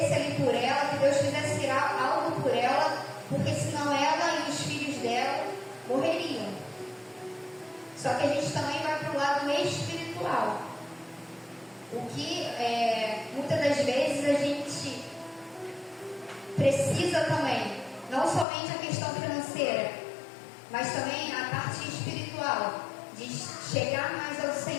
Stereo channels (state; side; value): drops out; right; at 18.4 s